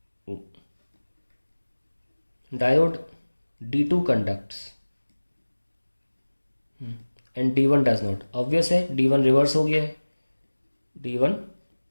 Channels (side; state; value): both; inverted; correlation -1.00